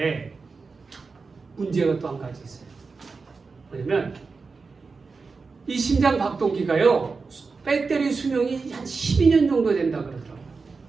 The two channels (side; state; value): left; quieter; 4.5 dB